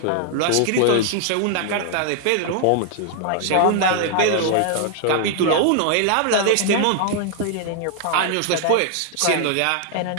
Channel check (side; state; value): both; different; correlation 0.00